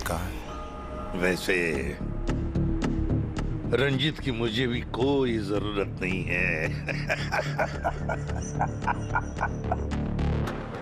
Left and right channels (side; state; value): both; identical; correlation 1.00